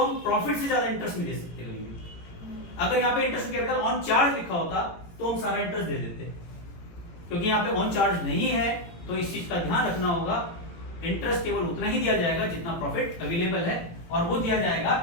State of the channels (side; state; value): right; late; 18 ms